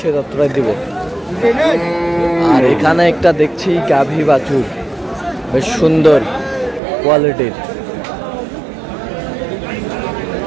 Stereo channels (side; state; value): left; drops out; at 6.8 s